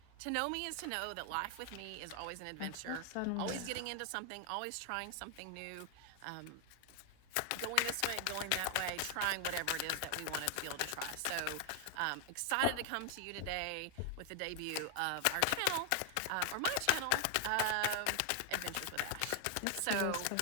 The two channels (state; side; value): different; both; correlation 0.00